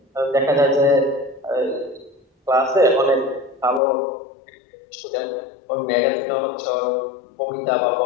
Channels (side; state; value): right; drops out; at 3.8 s